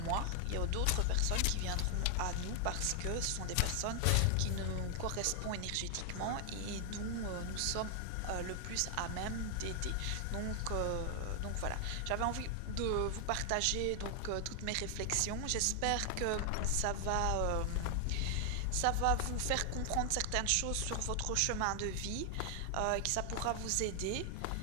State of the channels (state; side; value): different; both; correlation 0.00